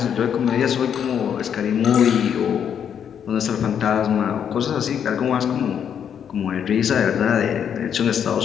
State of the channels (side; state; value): right; quieter; 8.3 dB